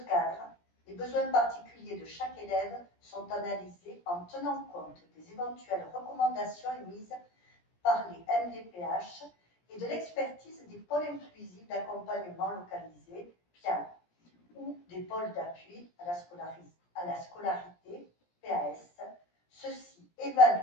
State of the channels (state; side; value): late; right; 17 ms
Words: cadre, les besoins particuliers de chaque élève sont analysés en tenant compte des éventuelles recommandations émises par les MDPH et de l'expertise des pôles inclusifs d'accompagnement localisés, PIAL, ou des pôles d'appui à la scolarité, PAS. Ceux-ci